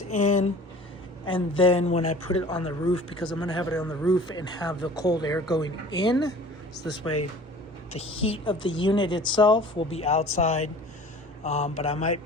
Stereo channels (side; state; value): both; normal; correlation 0.45